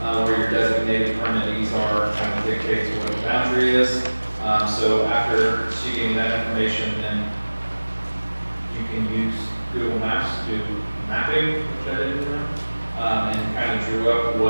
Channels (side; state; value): both; inverted; correlation -1.00